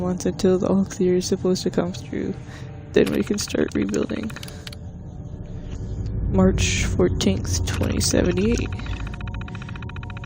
until the all clear is supposed to come through. Then we can start rebuilding. March 14th, 2078.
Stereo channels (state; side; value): identical; both; correlation 1.00